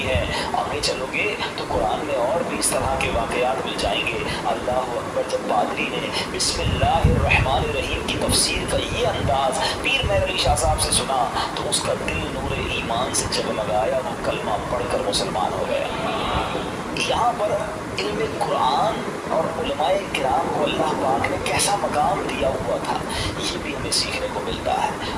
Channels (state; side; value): identical; both; correlation 1.00